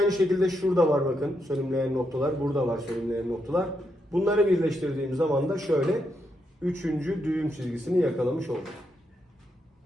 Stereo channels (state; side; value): normal; both; correlation 0.81